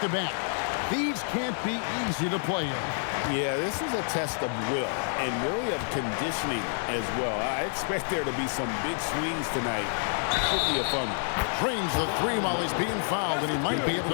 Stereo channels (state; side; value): silent; right; 59 dB below the other